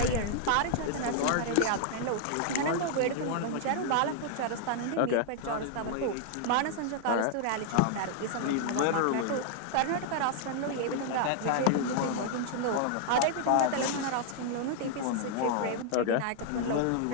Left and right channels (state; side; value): different; both; correlation 0.00